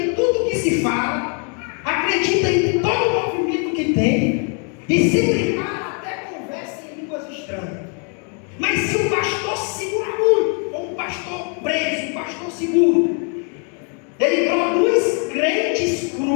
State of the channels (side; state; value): right; quieter; 40.0 dB